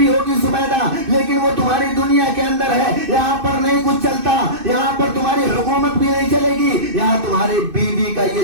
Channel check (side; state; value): left; late; 2.6 ms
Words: ہوگی زبیدہ, لیکن وہ تمہاری دنیا کے اندر ہے, یہاں پر نہیں کچھ چلتا, یہاں پر تمہاری حکومت بھی نہیں چلے گی, یہاں تمہاری بیوی کا یہ